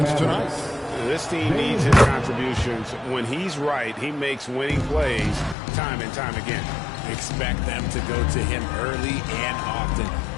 tonight. This team needs his contributions. When he's right, he makes winning plays time and time again. Expect them to go to him early and often.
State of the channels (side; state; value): right; drops out; at 5.6 s